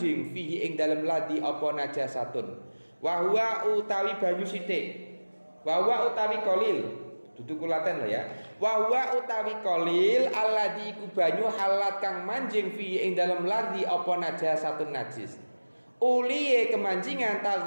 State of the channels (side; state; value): both; inverted; correlation -1.00